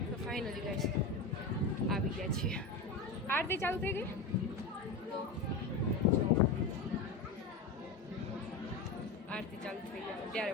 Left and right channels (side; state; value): right; quieter; 3.6 dB